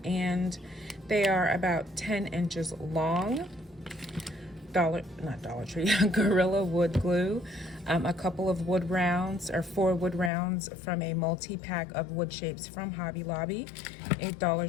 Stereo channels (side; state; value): right; drops out; at 10.3 s